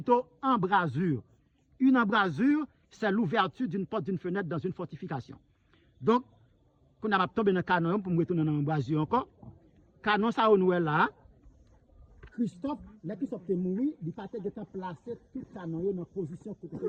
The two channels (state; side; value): identical; both; correlation 1.00